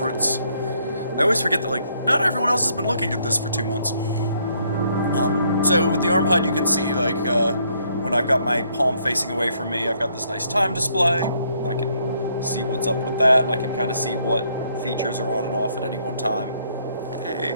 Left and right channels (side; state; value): both; inverted; correlation -0.69